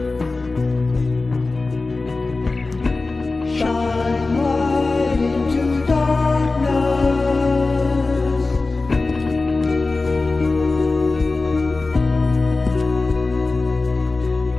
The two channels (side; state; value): right; quieter; 3.5 dB